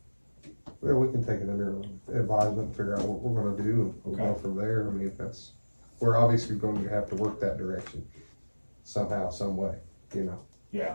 Yeah, we can take it under advisement and figure out what we're gonna do, and we'll go Okay. from there. I mean, we're obviously going to have to work that direction somehow, some way, you know. yeah.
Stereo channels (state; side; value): inverted; both; correlation -1.00